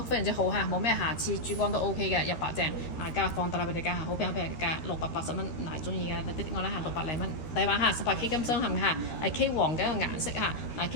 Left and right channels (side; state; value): right; late; 13 ms